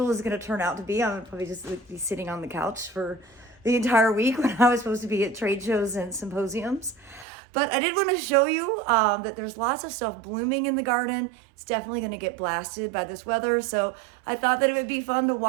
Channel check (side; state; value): left; drops out; at 7.2 s